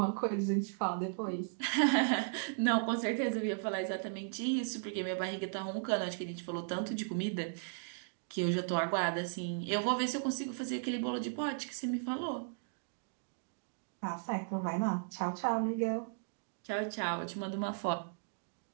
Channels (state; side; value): silent; left; digital silence